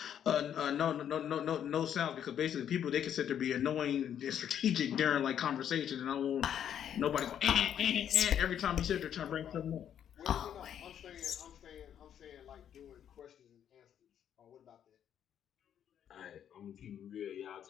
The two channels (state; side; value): quieter; right; 9.4 dB